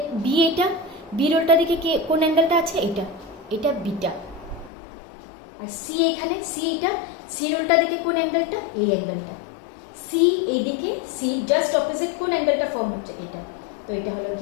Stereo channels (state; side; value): drops out; right; at 4.7 s